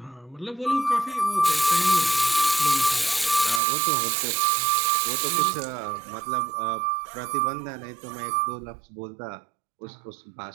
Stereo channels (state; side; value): drops out; left; at 3.6 s